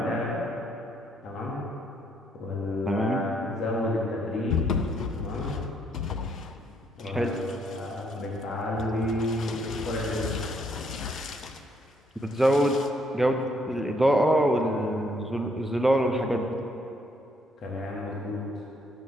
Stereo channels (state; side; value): normal; both; correlation 0.70